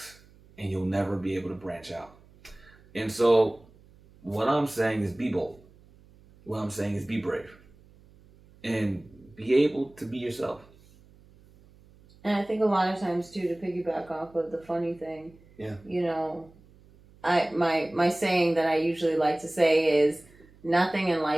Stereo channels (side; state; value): right; noise; hum, 26 dB below the sound